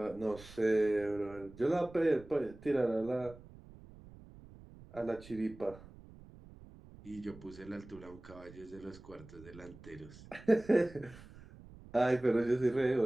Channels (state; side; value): noise; right; rumble, 19 dB below the sound